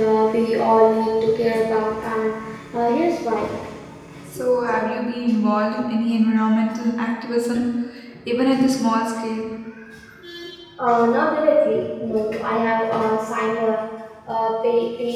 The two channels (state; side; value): identical; both; correlation 1.00